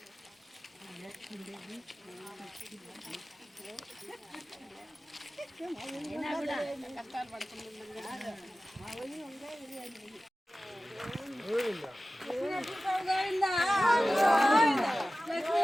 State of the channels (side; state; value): both; normal; correlation 0.96